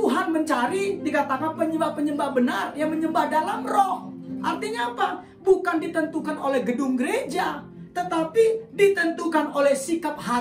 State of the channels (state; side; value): identical; both; correlation 1.00